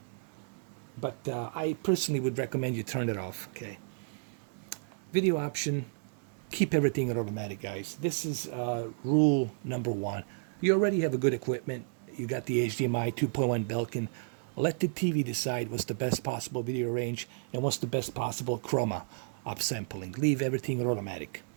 But I personally would recommend you turn it off, okay? Video option, keep everything at automatic, guys. This is rule number 1. You already have a good equipment. You got the HDMI 2.1 Belkin. Let the TV decide what's the best possible video range and what's the best possible chroma upsampling. Leave everything at automatic.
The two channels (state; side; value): silent; left; digital silence